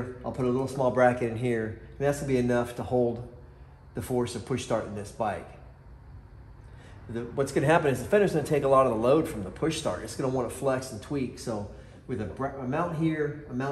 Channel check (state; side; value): identical; both; correlation 1.00